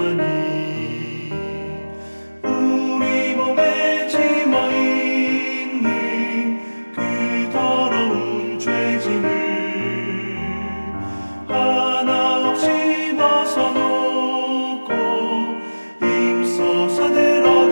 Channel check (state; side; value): inverted; both; correlation -1.00